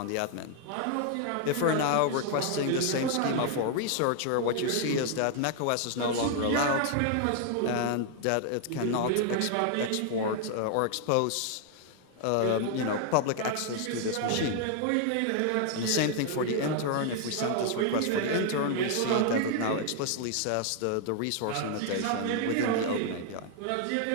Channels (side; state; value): both; different; correlation 0.00